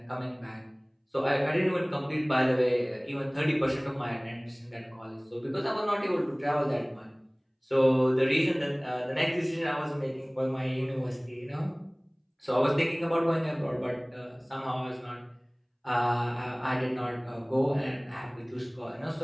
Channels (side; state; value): both; identical; correlation 1.00